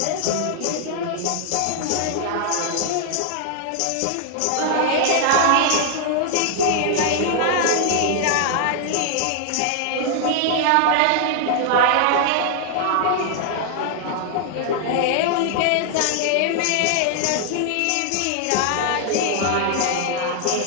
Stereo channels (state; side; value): different; both; correlation 0.00